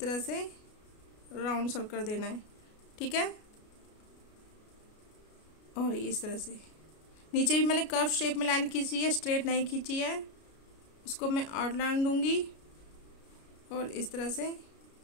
से राउंड सर्कल देना है, ठीक है। और इस तरह से नीचे भी मैंने कर्व शेप में लाइन खींची है, स्ट्रेट नहीं खींची है। उसको मैं आउटलाइन दूंगी और इस तरह से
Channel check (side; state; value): right; late; 33 ms